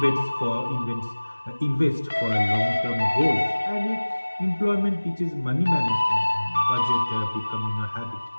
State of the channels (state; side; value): inverted; both; correlation -1.00